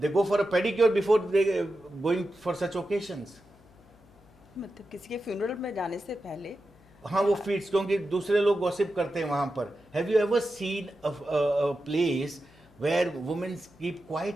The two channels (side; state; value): left; noise; hum, 28 dB below the sound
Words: go for a pedicure before they going for such occasions. मतलब किसी के फ्यूनरल में जाने से पहले. हाँ, वो फीट्स, क्योंकि दूसरे लोग गॉसिप करते हैं वहां पर. Have you ever seen a place where women keep